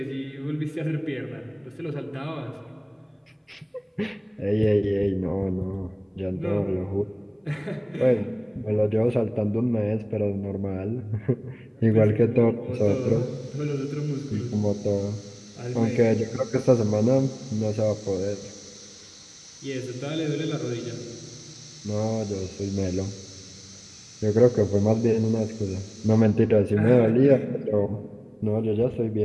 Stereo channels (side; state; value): both; identical; correlation 1.00